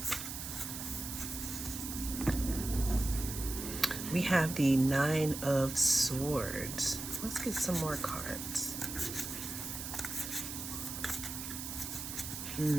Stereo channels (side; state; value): right; noise; hiss, 7 dB below the sound